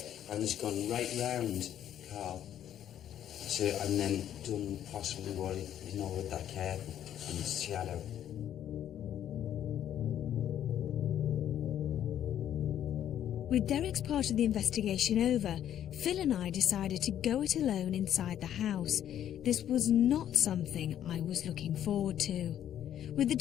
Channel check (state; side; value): quieter; right; 10.7 dB